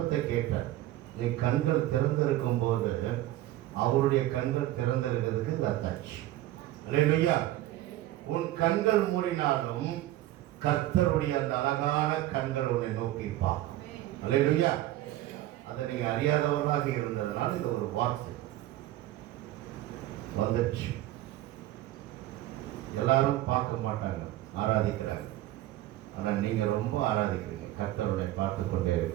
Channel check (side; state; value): left; quieter; 15.0 dB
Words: கேட்டார். நீ கண்கள் திறந்திருக்கும் போது அவருடைய கண்கள் திறந்திருக்கிறதுக்கு இது அத்தாச்சு. அல்லேலூயா. உன் கண்கள் மூடினாலும் கர்த்தருடைய அந்த அழகான கண்கள் உன்னை நோக்கிப்பா. அல்லேலூயா. அதை நீங்க அறியாதவர்களாக இருந்ததுனால இது ஒரு வார்த்தை வந்துடுச்சு. எல்லாரும் பார்க்க மாட்டாங்க, ஆராதிக்கிறாங்க. ஆனால் நீங்க ரொம்ப ஆராதிக்கிறீங்க. கர்த்தருடைய பார்த்து கொண்டே